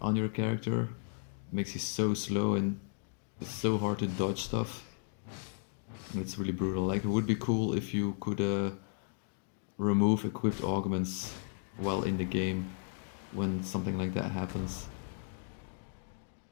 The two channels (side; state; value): right; silent; digital silence